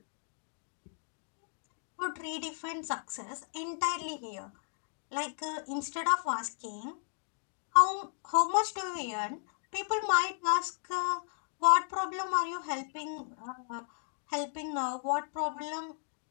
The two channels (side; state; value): right; silent; digital silence